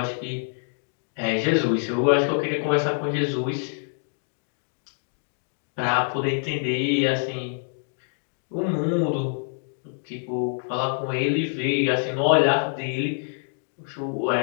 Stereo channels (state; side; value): silent; right; digital silence